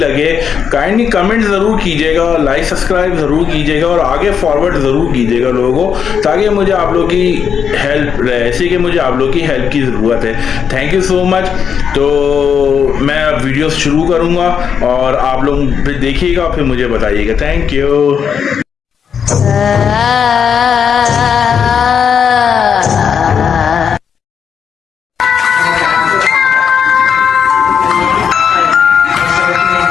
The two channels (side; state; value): right; quieter; 7.2 dB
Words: काइंडली कमेंट ज़रूर कीजिएगा, लाइक सब्सक्राइब ज़रूर कीजिएगा, और आगे फॉरवर्ड ज़रूर कीजिएगा लोगों को, ताकि मुझे आप लोग की हेल्प रहे, ऐसे कि मुझे आप लोग की हेल्प की ज़रूरत है। Thank you so much. तो मैं अब वीडियो शुरू करूँगा और आप लोग फिर देखिएगा, फिर मुझे बताइएगा। Thank you.